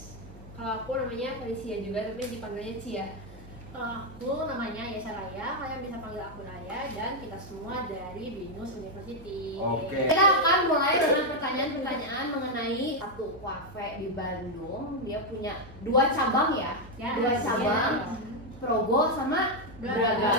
Kalau aku namanya Felicia juga, tapi dipanggilnya Cia. Kalau aku namanya Yesa Raya, kalian bisa panggil aku Raya, dan kita semua dari Binus University. Oke. Kita akan mulai dengan pertanyaan-pertanyaan mengenai satu kafe di Bandung. Dia punya 2 cabang ya, Ya, 2 cabang, iya. Progo sama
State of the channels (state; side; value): normal; both; correlation 0.01